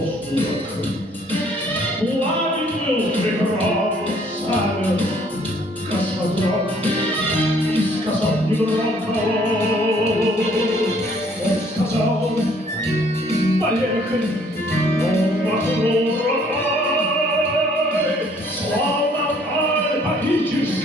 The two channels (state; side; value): normal; both; correlation 0.61